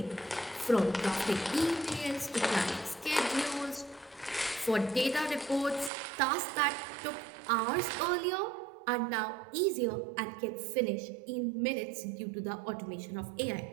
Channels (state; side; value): drops out; left; at 5.9 s